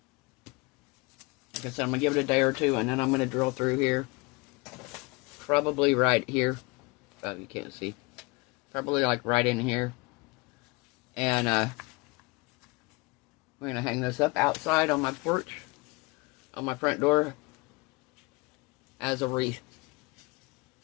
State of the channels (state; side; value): quieter; right; 26.1 dB